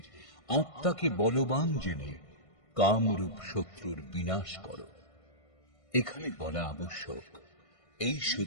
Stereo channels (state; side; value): late; right; 1.5 ms